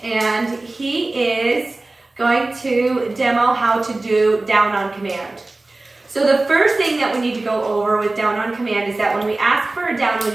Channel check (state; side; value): quieter; left; 3.0 dB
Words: and he is going to demo how to do down on command. So the first thing that we need to go over with down on command is that when we ask for a down,